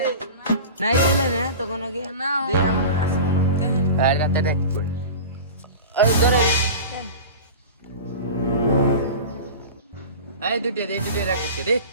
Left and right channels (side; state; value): both; inverted; correlation -0.33